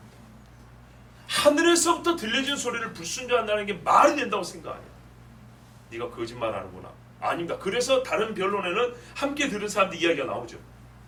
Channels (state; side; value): identical; both; correlation 1.00